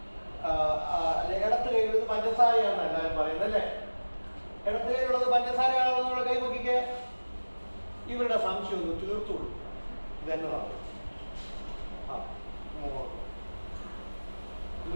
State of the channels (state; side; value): inverted; both; correlation -1.00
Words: ഇടത്ത് കയ്യിലുള്ളത് പഞ്ചസാരയാണെന്ന് എല്ലാവരും പറയുന്നത് അല്ലേ? ഇടത്ത് കയ്യിലുള്ളത് പഞ്ചസാരയാണോ എന്നുള്ള കൈ നോക്കിക്കേ. ഇവരുടെ സംശയം ഒന്ന് തീർത്തു കൊടുക്കും. ഇതെന്നതാണ്